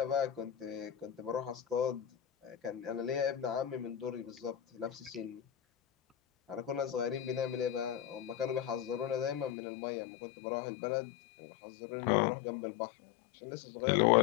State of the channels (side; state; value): right; drops out; at 9.5 s